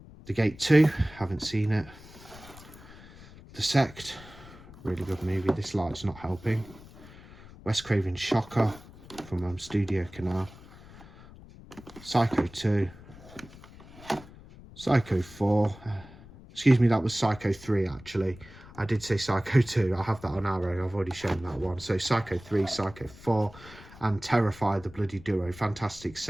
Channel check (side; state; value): left; noise; rumble, 19 dB below the sound